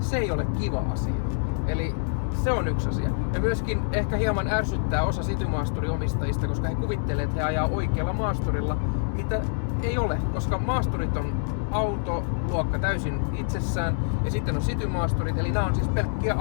ei ole kiva asia. Eli se on yksi asia. Ja myöskin ehkä hieman ärsyttää osa City-maasturiomistajista, koska he kuvittelee, että he ajaa oikealla maasturilla, mitä ei ole, koska maasturit on autoluokka täysin itsessään ja sitten on City-maasturit, eli nämä on siis pelkkiä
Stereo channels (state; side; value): silent; right; digital silence